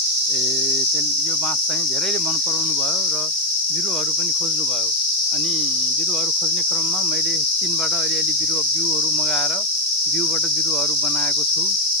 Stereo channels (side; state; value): right; noise; hiss, 17 dB below the sound